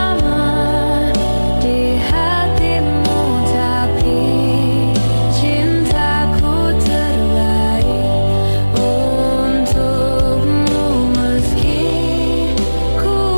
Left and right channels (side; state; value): both; inverted; correlation -1.00